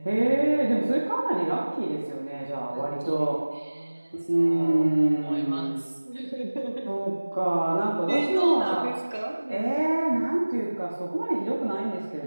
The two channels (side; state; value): both; inverted; correlation -1.00